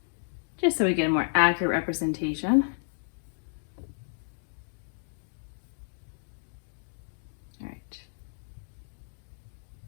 just so we get a more accurate representation. All right.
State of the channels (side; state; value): right; silent; digital silence